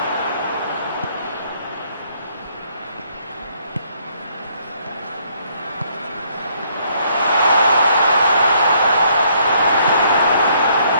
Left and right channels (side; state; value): both; inverted; correlation -0.67